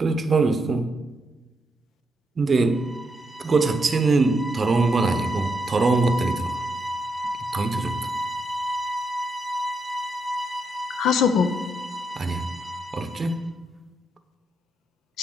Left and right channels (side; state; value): both; normal; correlation 0.80